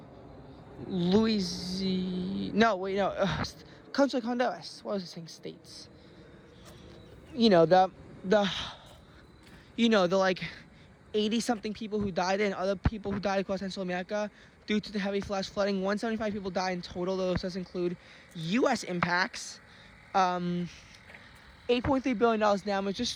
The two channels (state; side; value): identical; both; correlation 1.00